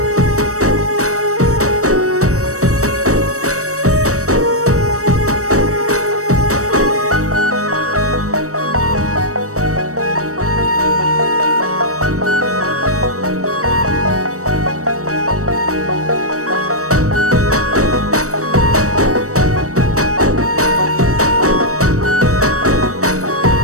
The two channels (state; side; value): late; left; 0.65 ms